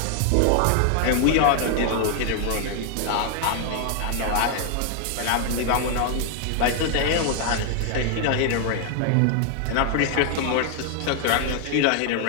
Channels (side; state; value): both; different; correlation 0.00